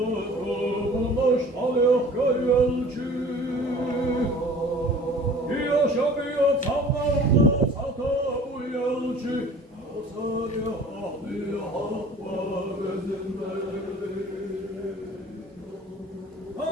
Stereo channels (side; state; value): both; normal; correlation 0.46